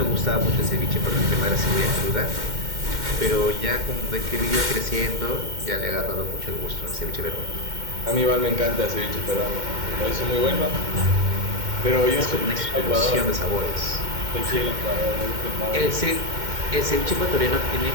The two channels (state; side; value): late; left; 2.1 ms